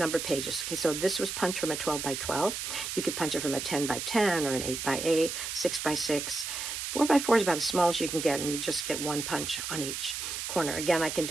pages. Okay, so this was punched from a 12x12. You could punch it from a 10x10 or an 8x8, 6x6. 4x4 is about as small as you can get, and you just get 1 punch on each corner. Again, I can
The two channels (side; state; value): right; noise; hiss, 4 dB below the sound